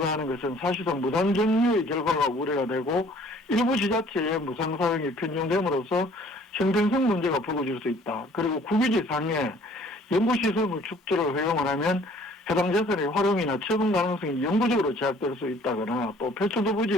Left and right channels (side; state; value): both; normal; correlation 0.56